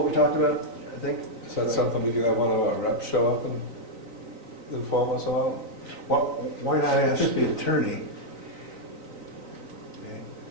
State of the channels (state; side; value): late; left; 3.9 ms